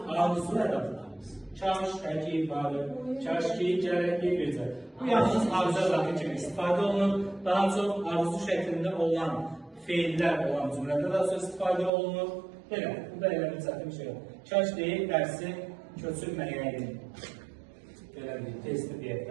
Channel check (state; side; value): drops out; left; at 11.9 s